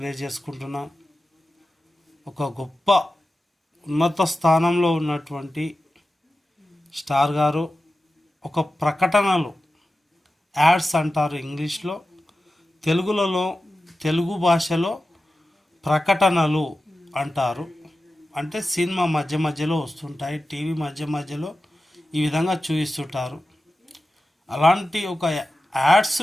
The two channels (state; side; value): normal; both; correlation 0.94